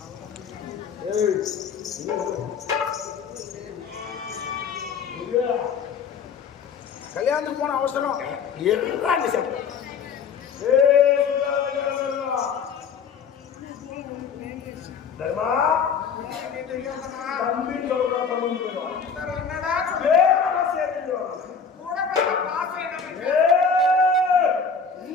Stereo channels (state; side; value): quieter; right; 6.0 dB